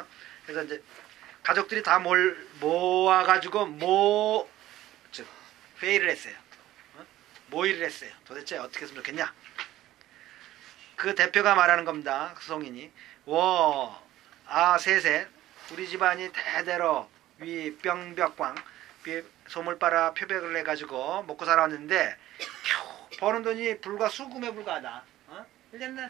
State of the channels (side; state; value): left; quieter; 14.6 dB